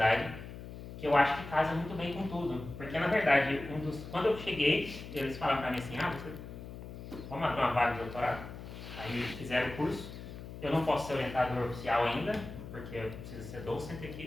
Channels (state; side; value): noise; left; hum, 11 dB below the sound